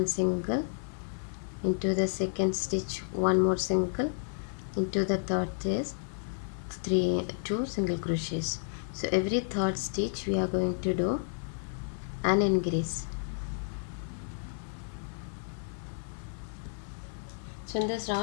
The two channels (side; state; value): right; silent; 57 dB below the other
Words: single, into the second stitch 1 more single, into the third is 2 single crochets. So every third stitch we are going to do an increase. So in this